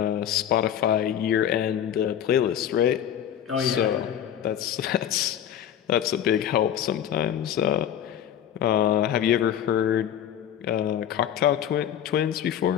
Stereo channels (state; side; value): quieter; right; 10.0 dB